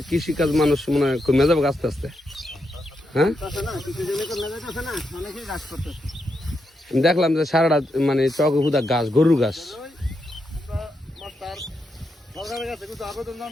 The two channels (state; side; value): normal; both; correlation 0.83